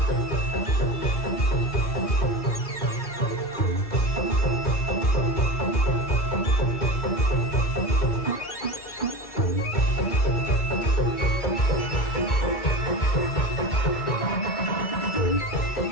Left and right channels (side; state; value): right; late; 2.3 ms